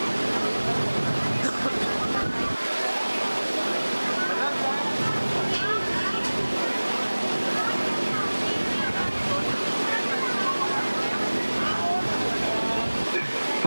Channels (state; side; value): inverted; both; correlation -1.00